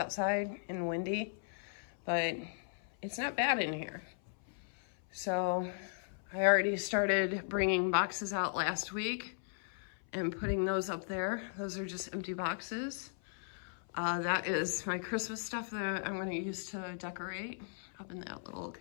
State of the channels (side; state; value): right; silent; 53 dB below the other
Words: and windy, but it's not bad in here. So I already started bringing boxes out last week and putting those up there. Those are just empty boxes. That is my Christmas stuff that I'm gonna use to decorate up in that little